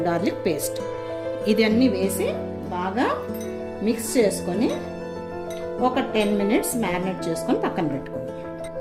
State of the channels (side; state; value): both; identical; correlation 1.00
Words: garlic paste ఇది అన్నీ వేసి బాగా మిక్స్ చేసుకొని ఒక 10 minutes మ్యారినేట్ చేసుకొని పక్కన పెట్టుకోండి.